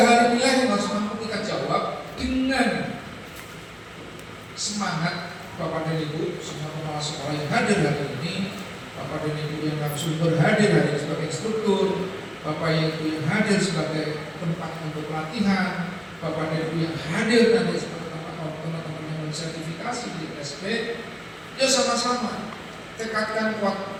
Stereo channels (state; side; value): identical; both; correlation 1.00